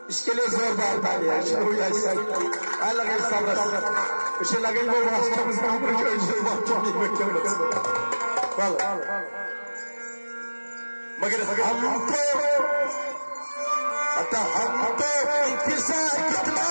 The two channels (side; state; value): both; inverted; correlation -1.00